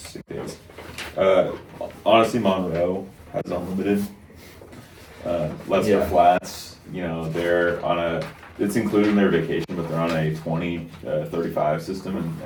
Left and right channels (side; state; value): both; identical; correlation 1.00